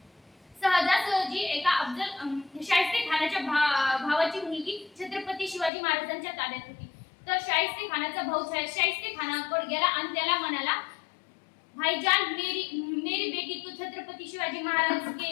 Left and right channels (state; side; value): drops out; right; at 5.7 s